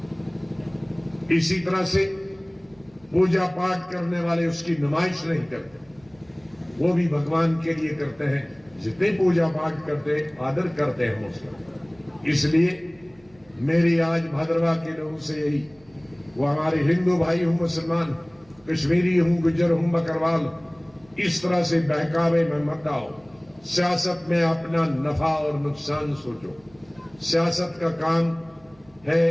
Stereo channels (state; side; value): noise; right; hum, 29 dB below the sound